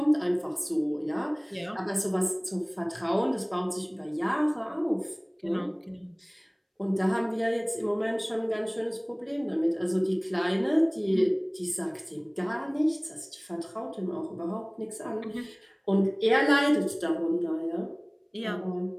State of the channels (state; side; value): identical; both; correlation 1.00